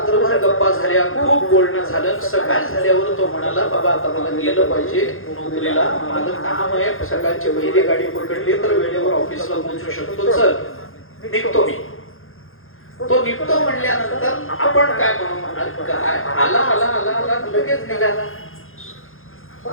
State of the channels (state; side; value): late; right; 0.60 ms